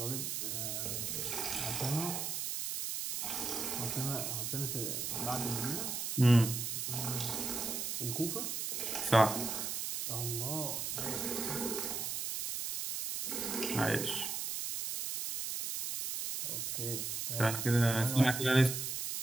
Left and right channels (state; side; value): noise; right; hiss, 2 dB below the sound